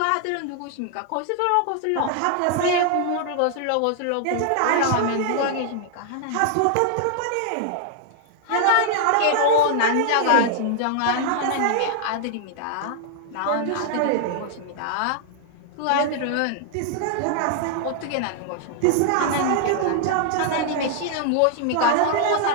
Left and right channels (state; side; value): different; both; correlation 0.00